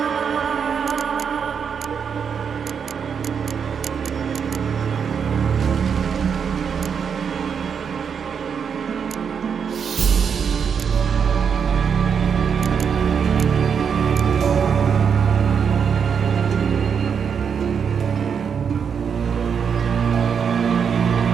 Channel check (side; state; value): left; quieter; 6.9 dB